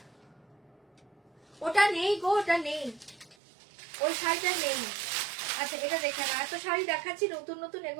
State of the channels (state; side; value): drops out; left; at 3.4 s